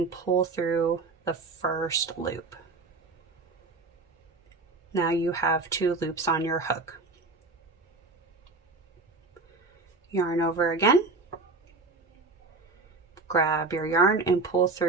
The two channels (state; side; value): quieter; left; 3.6 dB